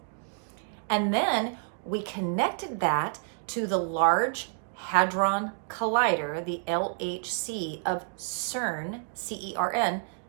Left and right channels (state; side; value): silent; left; 58 dB below the other